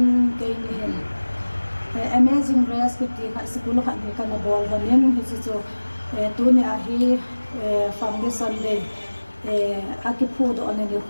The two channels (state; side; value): inverted; both; correlation -1.00